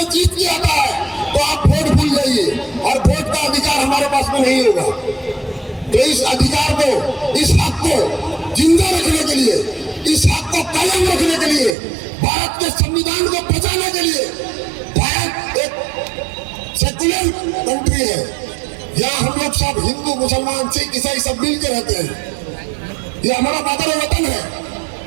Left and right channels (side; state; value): left; drops out; at 11.8 s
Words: जीत के आता है तो आप वोट भूल जाइए और वोट का अधिकार हमारे पास में नहीं होगा। तो इस अधिकार को, इस हक को जिंदा रखने के लिए, इस हक को कायम रखने के लिए, भारत के संविधान को बचाने के लिए, भारत एक सेकुलर कंट्री है, यहाँ हम लोग सब हिंदू मुसलमान सिख ईसाई सब मिलकर रहते हैं। ये हमारा मातर वतन है,